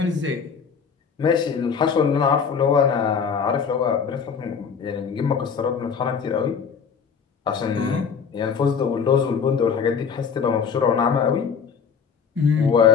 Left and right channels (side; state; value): right; quieter; 6.3 dB